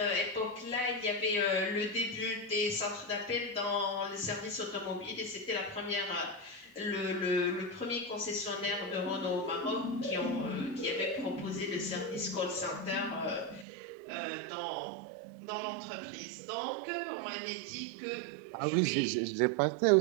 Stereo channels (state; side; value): drops out; left; at 13.7 s